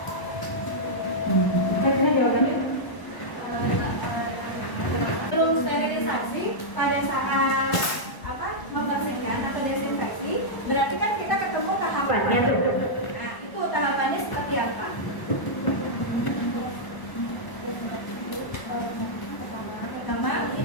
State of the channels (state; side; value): late; right; 1.0 ms